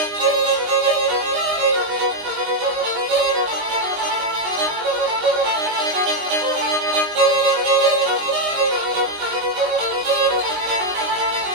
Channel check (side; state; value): left; late; 19 ms